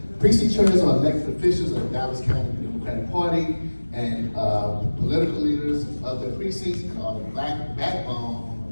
Precinct chairs are elected officials of the Dallas County Democratic Party and political leaders of the precincts and are the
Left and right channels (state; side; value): inverted; both; correlation -1.00